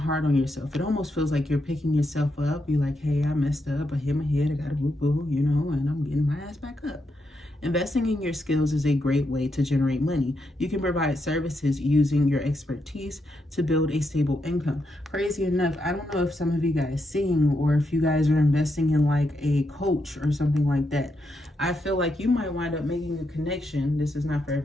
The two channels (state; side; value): normal; both; correlation 0.82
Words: on yourself. It almost feels like you're picking yourself up. You're like, hey, I messed up. I hit my head. I got a boo-boo, you know, and I'm getting my ass back up. Investing in your skills is a great way to generate money. You can provide services using your expertise to build a stable income. Crazy enough, I don't know if some of you guys sing, or if you guys are investing in like a coach or something like that. I feel like you might wind up making a connection. This is not for